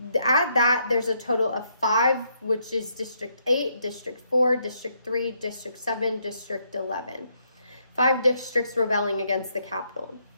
at that, there's a total of 5, which is District 8, District 4, District 3, District 7, District 11. 5 districts rebelling against the Capitol.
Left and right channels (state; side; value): inverted; both; correlation -0.74